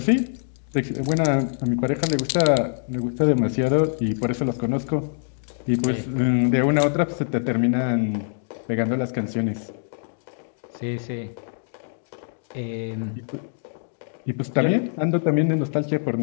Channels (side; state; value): right; silent; digital silence